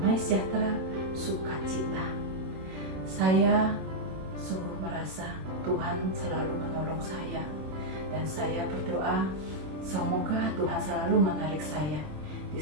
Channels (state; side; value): late; left; 26 ms